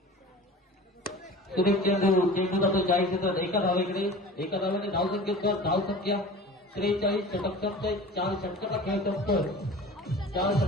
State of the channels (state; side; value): normal; both; correlation 0.39